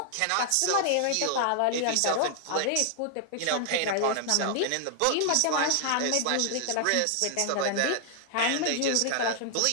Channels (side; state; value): both; different; correlation 0.00